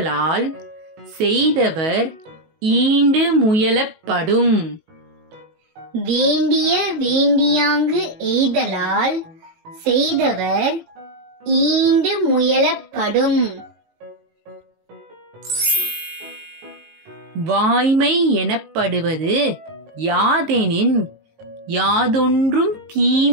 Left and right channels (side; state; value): left; late; 19 ms